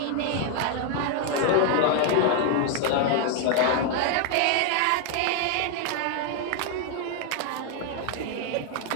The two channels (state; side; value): different; both; correlation 0.00